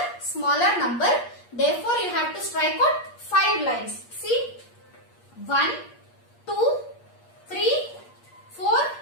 smaller number. Therefore, you have to strike out 5 lines. See, 1, 2, 3, 4,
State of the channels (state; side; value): late; right; 8.5 ms